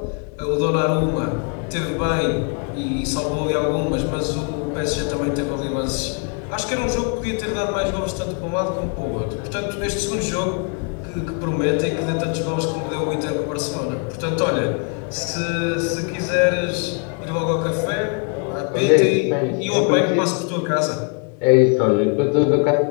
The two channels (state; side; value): quieter; right; 39.0 dB